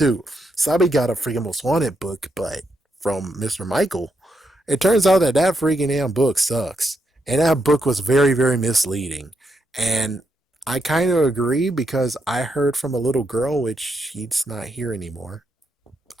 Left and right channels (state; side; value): normal; both; correlation 0.81